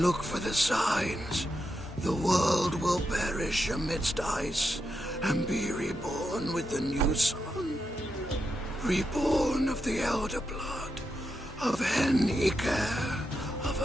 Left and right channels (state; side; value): normal; both; correlation 0.85